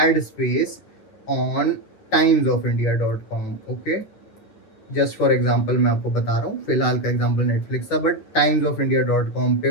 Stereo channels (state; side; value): late; right; 9.5 ms